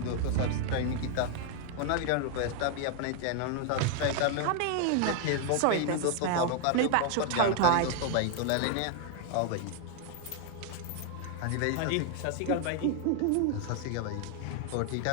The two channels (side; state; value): both; different; correlation 0.00